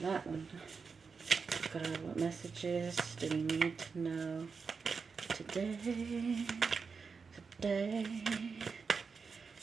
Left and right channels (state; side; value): quieter; left; 5.2 dB